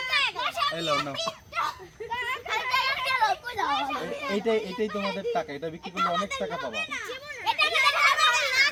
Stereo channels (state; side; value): identical; both; correlation 1.00